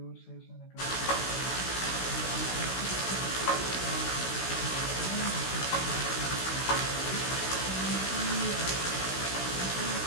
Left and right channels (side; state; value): right; late; 16 ms